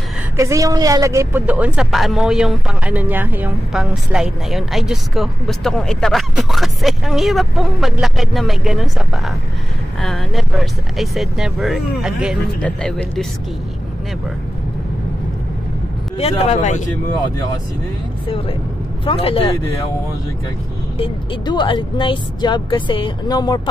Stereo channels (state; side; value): normal; both; correlation 0.93